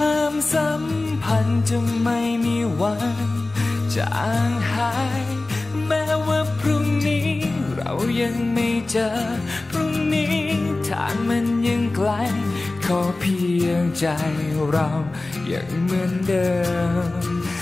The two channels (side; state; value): right; quieter; 3.1 dB